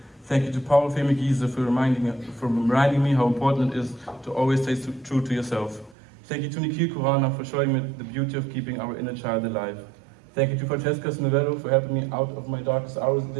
Thank you to Paul Femigiese for reminding me how important it is to always stay true to yourself. Thank you to Nikhil Kurana for showing me the beauty of keeping our inner child alive. Thank you to Francesca Snovello for helping me out of my darkest hours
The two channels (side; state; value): left; drops out; at 6.0 s